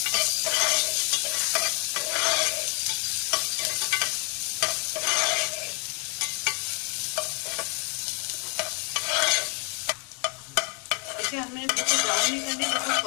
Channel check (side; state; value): right; quieter; 35.9 dB